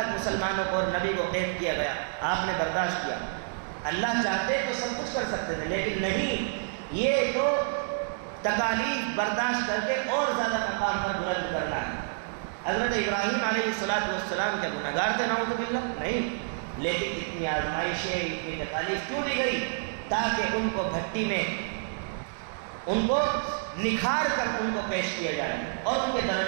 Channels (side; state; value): left; silent; digital silence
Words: مسلمانوں کو اور نبی کو قید کیا گیا، آپ نے برداشت کیا۔ اللہ چاہتے تو سب کچھ کر سکتے تھے لیکن نہیں، یہ تو تکالیف برداشت کر کے اور زیادہ مقام پر بلند کرنا ہے۔ حضرت ابراہیم علیہ السلام کیا گناہگار تھے؟ نعوذ باللہ، نہیں، لیکن اتنی آزمائشیں، اتنی تکالیف کیوں دی گئی؟ تاکہ ان کو بھٹی میں ان کو نکھار کر ان کو پیش کیا جائے اور ان کے